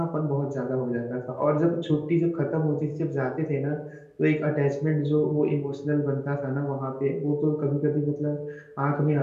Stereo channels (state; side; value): identical; both; correlation 1.00